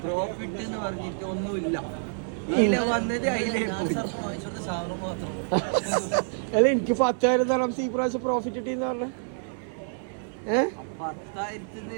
പ്രോഫിറ്റ് എന്ന് പറഞ്ഞിട്ട് ഒന്നുമില്ല. ഇതിലെ വന്നത് അതിലേക്ക് അല്ല എനിക്ക് 10,000 തരാം ഈ പ്രാവശ്യം പ്രോഫിറ്റ് കിട്ടിയെന്ന് പറഞ്ഞ 10,000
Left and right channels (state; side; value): silent; left; 56 dB below the other